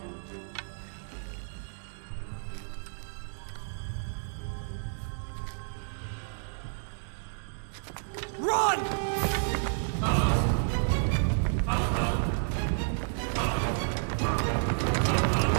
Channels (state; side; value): silent; left; digital silence